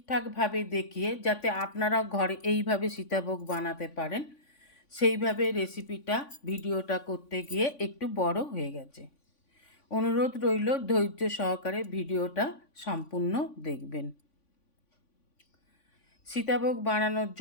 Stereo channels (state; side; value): late; right; 3.5 ms